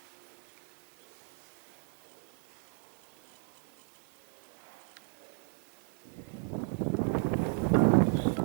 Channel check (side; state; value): left; silent; 54 dB below the other